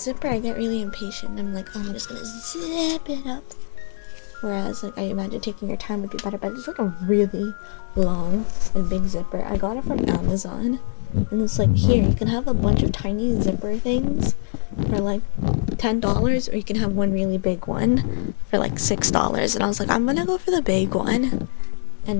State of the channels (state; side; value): silent; right; digital silence